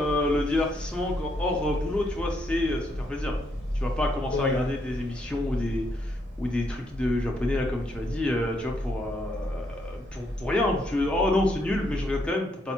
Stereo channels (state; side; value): normal; both; correlation 0.75